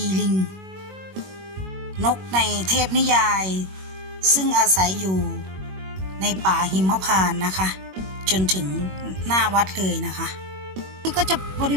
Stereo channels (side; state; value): left; late; 21 ms